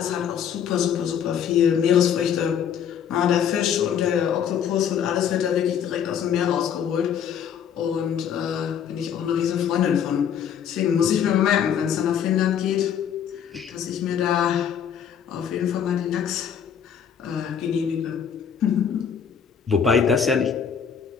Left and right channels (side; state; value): right; quieter; 8.2 dB